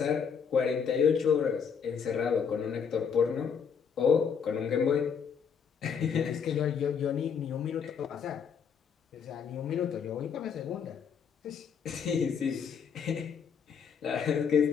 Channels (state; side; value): quieter; right; 6.8 dB